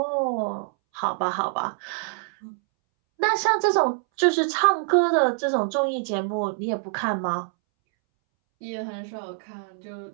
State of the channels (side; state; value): left; silent; 62 dB below the other